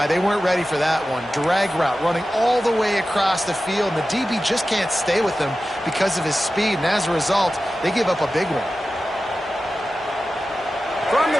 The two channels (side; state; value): both; normal; correlation 0.94